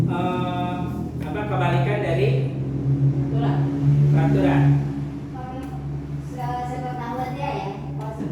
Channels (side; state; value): both; identical; correlation 1.00